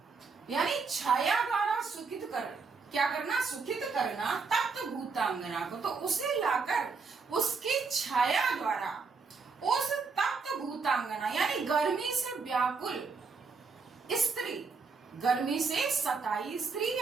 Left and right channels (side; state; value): left; quieter; 4.8 dB